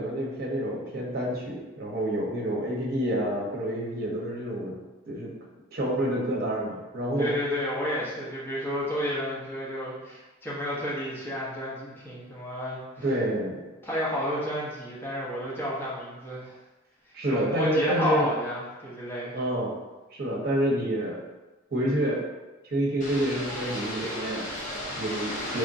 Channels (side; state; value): both; normal; correlation 0.44